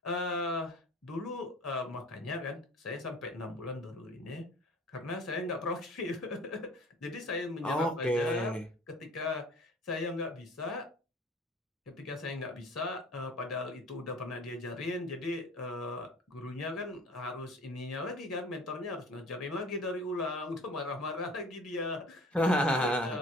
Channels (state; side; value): normal; both; correlation 0.46